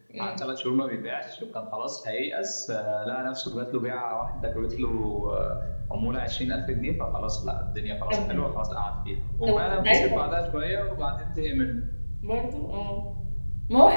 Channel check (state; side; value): inverted; both; correlation -1.00